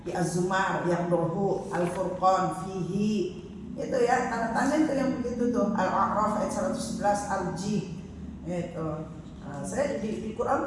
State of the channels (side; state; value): both; identical; correlation 1.00